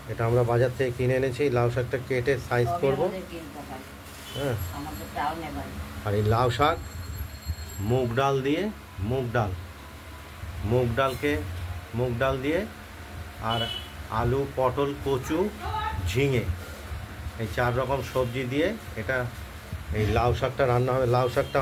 এটা আমরা বাজার থেকে কিনে এনেছি। লাউ শাকটা কেটে সাইজ করব। হ্যাঁ, আর এই লাউ শাক মুগ ডাল দিয়ে, মুগ ডাল দিয়ে আর আলু, পটল, কচু, ঝিঙে, এই 4 রকম সবজি দিয়ে এটা এই লাউ শাকটা রান্না হবে। লাউ শাকটা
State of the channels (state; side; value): identical; both; correlation 1.00